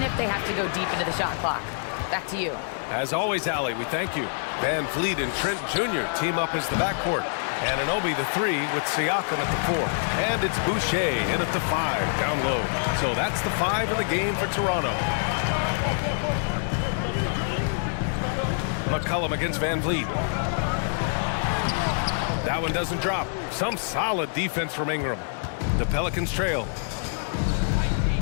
if they have to go deep into the shot clock. Back to you. As always, Allie, we thank you. Van Vliet and Trent Jr. team up as the backcourt. Anunoby the 3 with Siakam at the 4. And it's Boucher in at the 5, down low. So that's the 5 in the game for Toronto. McCollum against Van Vliet. That one doesn't drop. Some solid defense from Ingram. The Pelicans trail.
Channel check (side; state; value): right; silent; digital silence